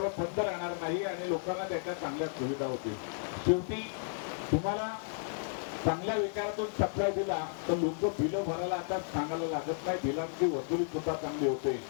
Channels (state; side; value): silent; right; digital silence